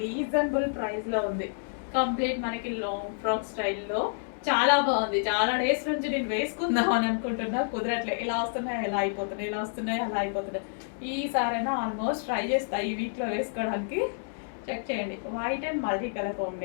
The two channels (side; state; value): right; silent; digital silence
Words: ప్రైస్లో ఉంది. కంప్లీట్ మనకి లాంగ్ ఫ్రాక్ స్టైల్లో చాలా బాగుంది. చాలా డేస్ నుంచి నేను వేసుకుందాం అని అనుకుంటున్నా, కుదరట్లే. ఇలా వస్తున్నాయి ఎలా అయిపోతున్నాయి, ఇలా వస్తున్నాయి అలా అయిపోతున్నాయి. ఈసారైనా ఆల్మోస్ట్ ట్రై చేస్తా ఈ వీక్లో వేసుకోవడానికి. చెక్ చేయండి, white and multi colour